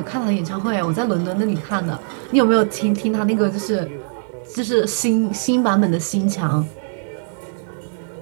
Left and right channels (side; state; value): left; silent; digital silence